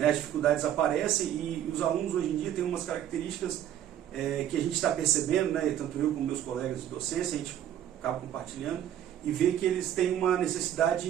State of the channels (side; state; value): left; quieter; 10.9 dB